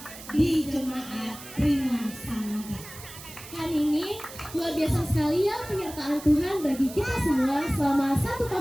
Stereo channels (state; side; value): noise; right; hiss, 15 dB below the sound